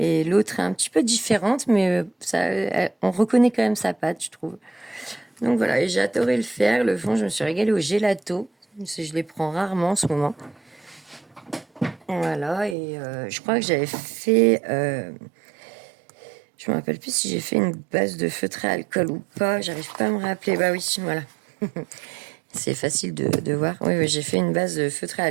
l'autre est un petit peu différente, mais on reconnaît quand même sa patte, je trouve. Donc voilà, et j'ai adoré le faire. Le fond, je me suis régalée au gelato. Je les prends rarement en ce moment. Voilà, et je crois que j'avais fait... je me rappelle plus si j'ai fait une base de feutré à alcool ou pas. J'arrive pas à me rappeler. Bah oui, voilà. C'est facile de voir. Oui, oui, j'ai fait une base de feutré à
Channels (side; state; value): left; drops out; at 12.8 s